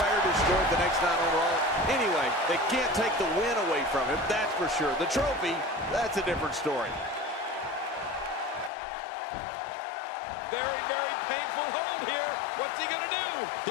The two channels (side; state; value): right; drops out; at 8.7 s